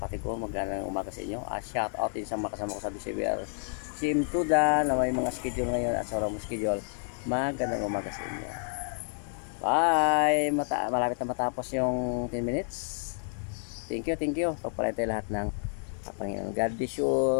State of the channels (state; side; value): silent; right; 58 dB below the other